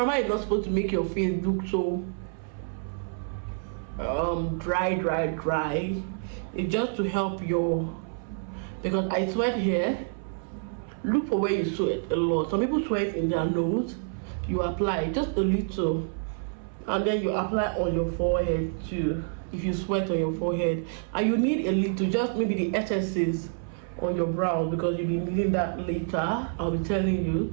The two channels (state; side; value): silent; left; 58 dB below the other